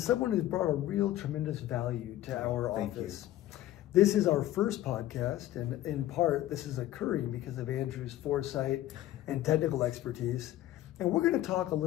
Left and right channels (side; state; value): right; quieter; 14.2 dB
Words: who's brought a real tremendous value to our office. This is our first podcast, and in part, this is occurring because of Andrew's foresight and technical expertise. And we're going to talk a